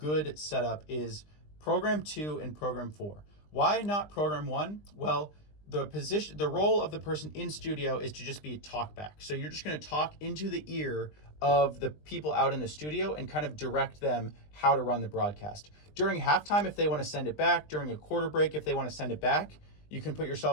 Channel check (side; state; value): right; late; 20 ms